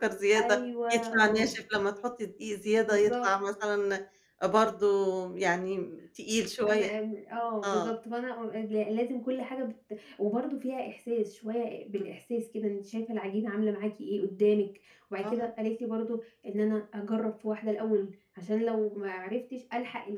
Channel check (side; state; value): both; identical; correlation 1.00